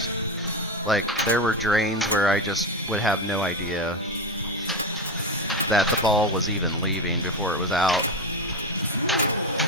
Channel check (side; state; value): both; normal; correlation 0.17